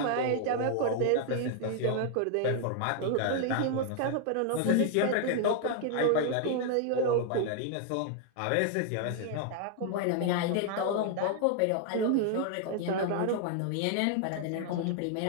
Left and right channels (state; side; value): different; both; correlation 0.00